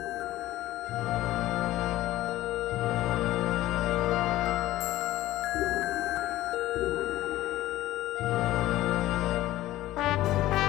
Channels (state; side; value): quieter; right; 15.6 dB